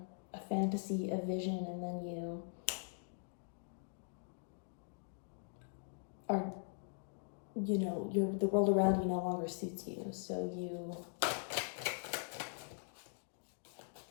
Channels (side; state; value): right; silent; digital silence